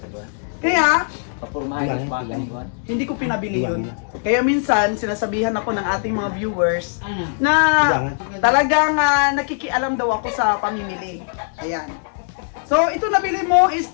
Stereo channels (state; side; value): silent; right; digital silence